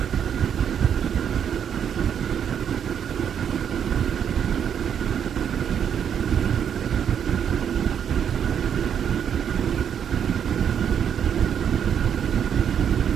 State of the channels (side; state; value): left; quieter; 8.4 dB